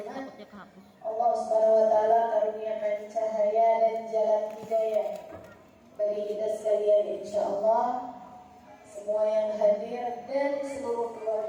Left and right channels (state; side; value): identical; both; correlation 1.00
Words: Allah SWT karuniakan cahaya dan jalan hidayah bagi kita sekalian insyaAllah. Semua yang hadir dan seluruh